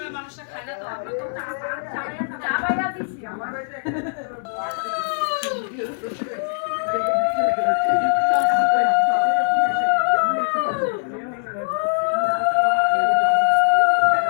মানুষটা খায় না তো, আমরা তো চা বাইরা দিছি আমার বাড়িতে।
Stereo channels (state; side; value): silent; right; digital silence